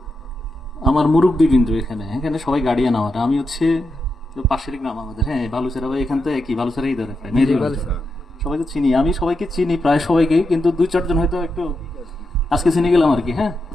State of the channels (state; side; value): normal; both; correlation 0.86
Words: আমার মুরব্বিবৃন্দ, এখানে এখানে সবাই গার্ডিয়ান আমার, আমি হচ্ছে পাশের গ্রাম আমাদের, হ্যাঁ বালুচেরা ভাই, এখান থেকে কি বালুচেরাই ধরে প্রায় সবাইকে চিনি, আমি সবাইকে চিনি প্রায় সবাইকে, কিন্তু দুই চারজন হয়তো একটু আজকে চিনে গেলাম আর কি। হ্যাঁ,